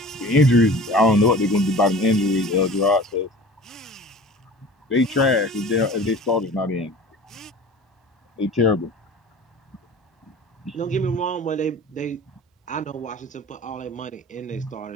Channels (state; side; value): normal; both; correlation 0.41